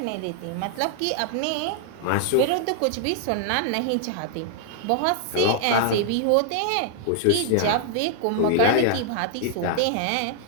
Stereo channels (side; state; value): both; different; correlation -0.01